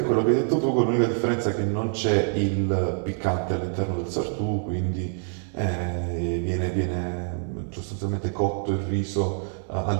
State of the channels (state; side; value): silent; left; 55 dB below the other